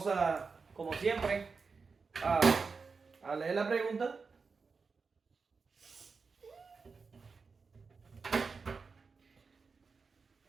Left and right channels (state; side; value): quieter; left; 4.8 dB